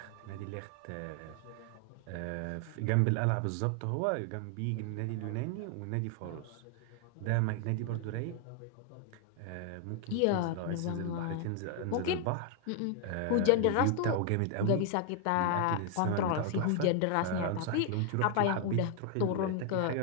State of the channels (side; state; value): both; different; correlation 0.00